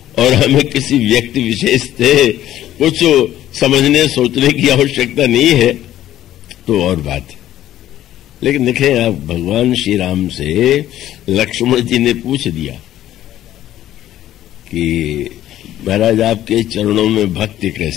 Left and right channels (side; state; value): right; quieter; 12.9 dB